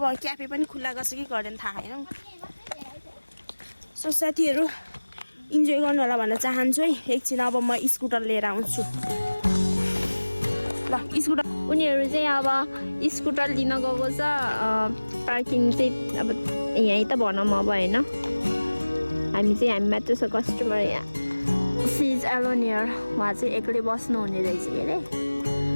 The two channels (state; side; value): inverted; both; correlation -1.00